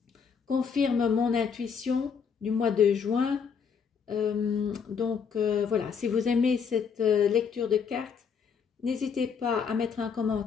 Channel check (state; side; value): quieter; right; 6.4 dB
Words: Confirme mon intuition du mois de juin. Voilà, si vous aimez cette lecture de cartes, n'hésitez pas à mettre un